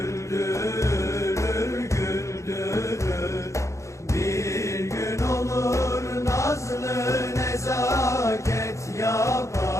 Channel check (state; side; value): late; right; 0.15 ms